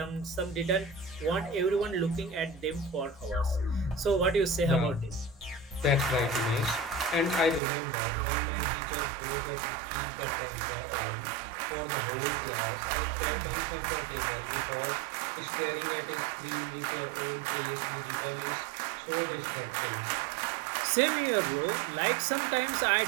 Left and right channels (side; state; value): left; drops out; at 7.6 s